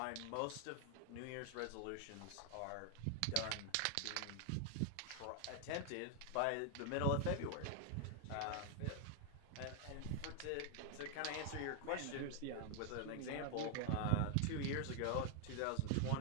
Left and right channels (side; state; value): both; different; correlation 0.00